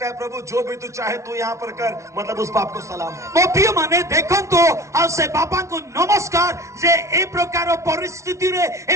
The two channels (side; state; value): left; late; 0.14 ms